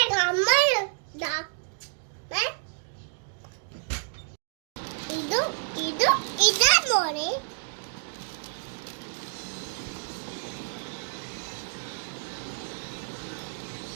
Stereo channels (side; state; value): left; silent; 57 dB below the other